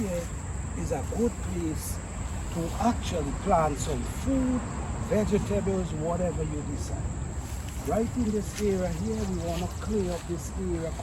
is a good place to actually plant some food, vegetables, whatever you decide. Right in this area here, we want to clear up this area,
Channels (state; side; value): identical; both; correlation 1.00